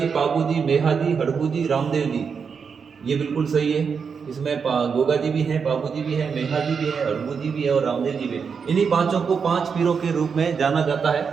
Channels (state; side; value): quieter; left; 6.0 dB